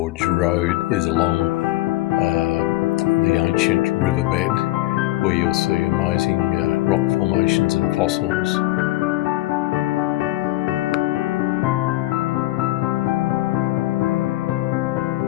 road is along the ancient riverbed, where you'll see amazing rock formations and fossils.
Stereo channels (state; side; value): quieter; right; 17.5 dB